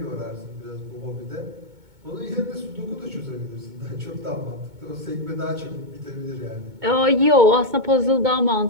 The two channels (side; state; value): left; late; 2.2 ms